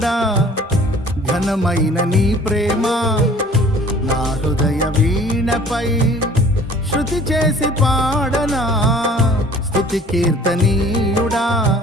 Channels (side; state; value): both; normal; correlation 0.50